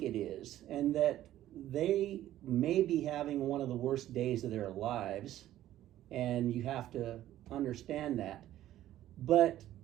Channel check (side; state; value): left; quieter; 13.3 dB